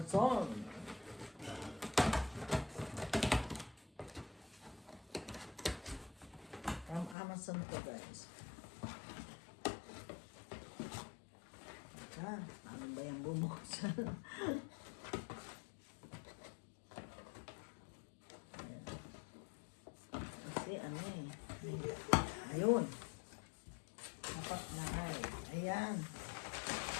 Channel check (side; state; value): right; drops out; at 7.2 s